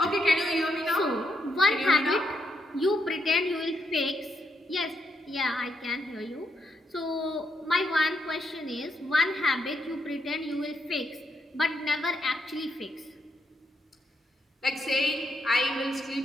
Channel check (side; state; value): both; normal; correlation 0.79